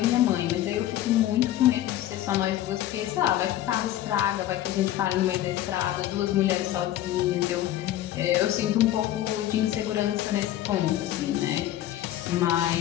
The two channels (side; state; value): right; quieter; 13.3 dB